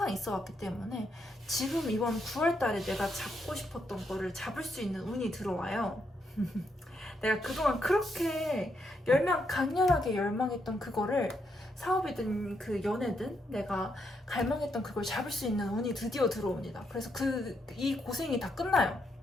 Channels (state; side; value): normal; both; correlation 0.79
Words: 있어 왔기 때문에 지금 이번 9월달에 내가 잡고 싶었던 거를 잡을 수 있는 운이 들어와요. 내가 그동안 그렇게 강렬하게 열망했던 그거를 사업이든 그 연애든 내가 갈망했던 그걸 잡을 수 있는 운이 드디어 들어옵니다. 그래서 이 고생이 다 끝나요.